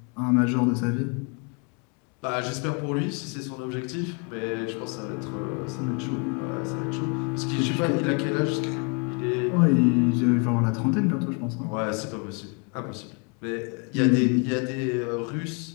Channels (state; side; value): quieter; right; 35.6 dB